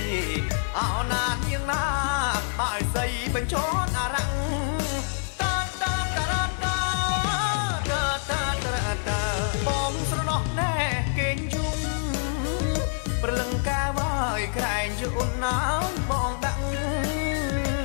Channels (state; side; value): silent; right; digital silence